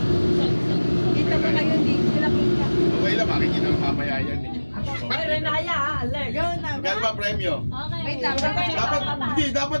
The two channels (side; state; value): both; inverted; correlation -1.00